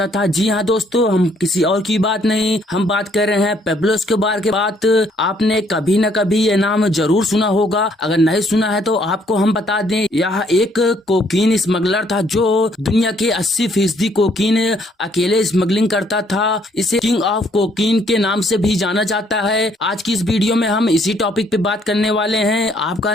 था। जी हाँ दोस्तों, हम किसी और की बात नहीं, हम बात कर रहे हैं पेब्लो एस्कोबार के बात। आपने कभी न कभी ये नाम जरूर सुना होगा, अगर नहीं सुना है तो आपको हम बता दें, यह एक कोकीन स्मगलर था जो दुनिया के 80% कोकीन अकेले स्मगलिंग करता था। इसे किंग ऑफ कोकीन के नाम से भी जाना जाता है। आज की इस वीडियो में हम इसी टॉपिक पे बात करने वाले हैं। आपका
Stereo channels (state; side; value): normal; both; correlation 0.66